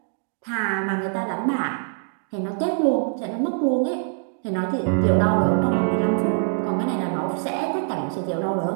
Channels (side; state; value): left; silent; 61 dB below the other